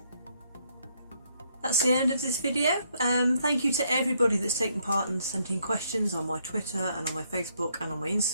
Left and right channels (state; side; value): inverted; both; correlation -0.72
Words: That's the end of this video. Thank you to everybody that's taken part and sent in questions on my Twitter and on my Facebook and on my